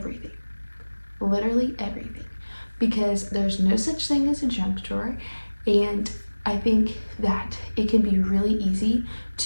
Literally everything. Because there's no such thing as a junk drawer, and I think that it can be really easy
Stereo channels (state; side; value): inverted; both; correlation -1.00